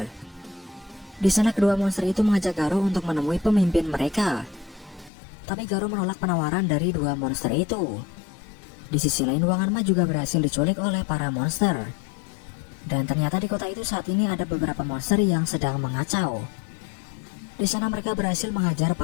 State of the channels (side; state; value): right; drops out; at 5.1 s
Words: Di sana kedua monster itu mengajak Garo untuk menemui pemimpin mereka. Tapi Garo menolak penawaran dari 2 monster itu. Di sisi lain Wanganma juga berhasil diculik oleh para monster. Dan ternyata di kota itu saat ini ada beberapa monster yang sedang mengacau. Di sana mereka berhasil menghajar